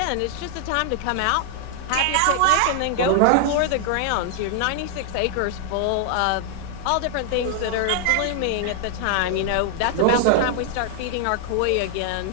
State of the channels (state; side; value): different; both; correlation 0.00